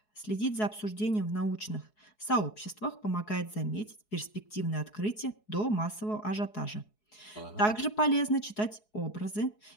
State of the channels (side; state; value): right; late; 4.7 ms